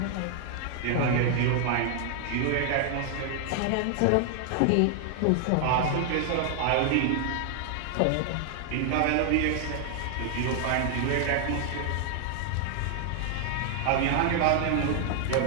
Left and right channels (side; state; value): both; different; correlation 0.00